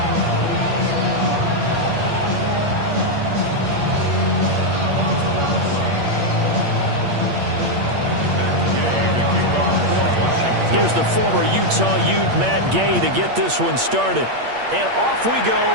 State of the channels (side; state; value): left; late; 8.5 ms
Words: Here's the former Utah Ute, Matt Gay, to get this one started. And off we